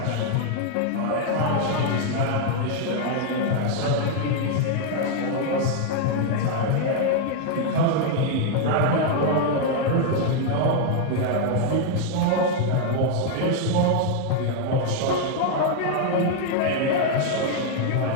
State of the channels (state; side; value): different; both; correlation 0.00